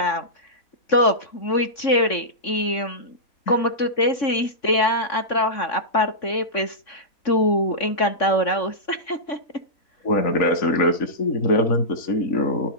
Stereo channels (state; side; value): late; right; 3.6 ms